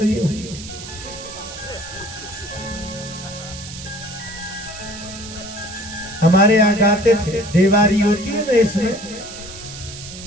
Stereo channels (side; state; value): right; noise; hiss, 12 dB below the sound